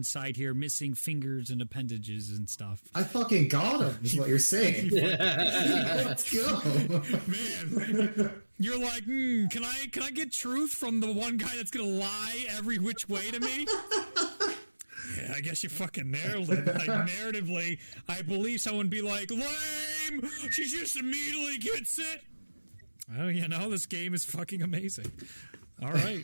here, missing fingers and appendages and stuff. I fucking got him, is what you're saying. Let's go. Man, you're like, can I get truth from the one guy that's going to lie every which way to me? Yeah, I guess you fucking nailed it. Like, narratively, I believe someone would be like, lame! She just immediately gets it! Oh, this game is fucking amazing. All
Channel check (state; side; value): inverted; both; correlation -1.00